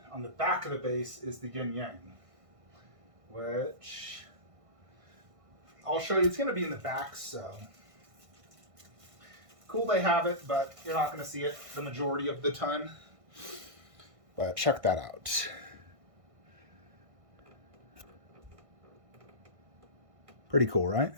on the back of the base is the yin yang, which I'll show you. It's going to be in the back, so cool they have it, but you're not going to see it the majority of the time. But check that out. Pretty cool, right?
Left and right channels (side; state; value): left; late; 1.6 ms